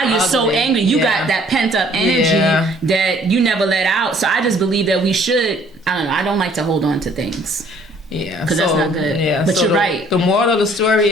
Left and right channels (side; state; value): both; normal; correlation 0.59